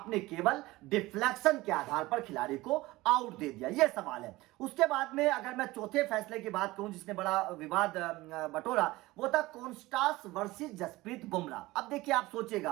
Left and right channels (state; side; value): quieter; left; 19.4 dB